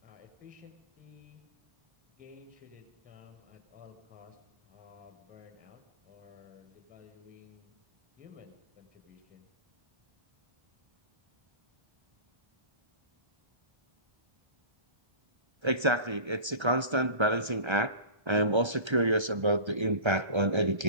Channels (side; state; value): left; late; 1.3 ms